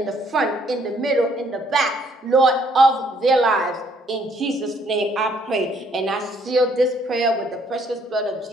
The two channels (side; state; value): both; normal; correlation 0.65